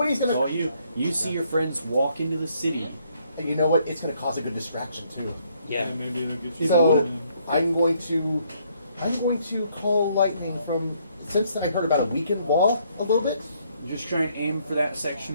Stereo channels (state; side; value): inverted; both; correlation -0.69